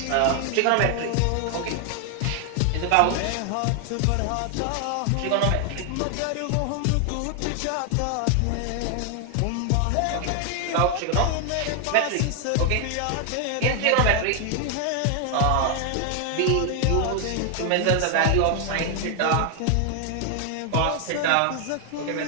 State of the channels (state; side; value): different; both; correlation 0.00